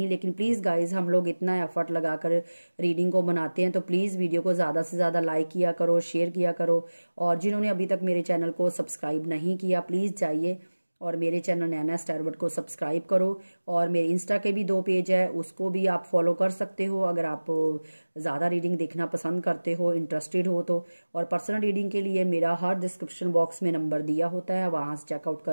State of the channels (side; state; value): both; inverted; correlation -1.00